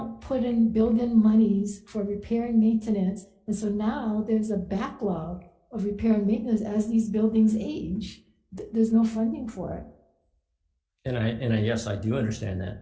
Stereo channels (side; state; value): both; identical; correlation 1.00